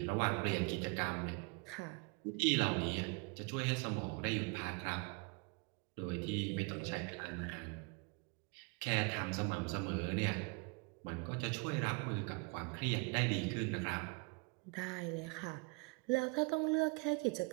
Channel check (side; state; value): left; quieter; 32.8 dB